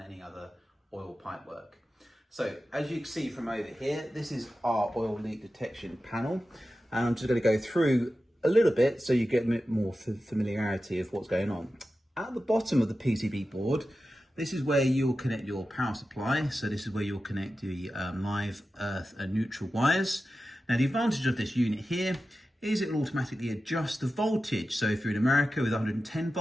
other oil pipe work. So as you can see from over here, this is our oil leak detection panel, and I'm just going to go through a little bit so you get a bit more familiarity of what's going on. At the bottom of the PCB board, this is where you'll connect your power supply. So this is where you'll connect the live, earth and neutral wires. Now the advantage of this unit here is it will automatically adjust the voltage. So if you're in America with 110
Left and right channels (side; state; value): both; normal; correlation 0.93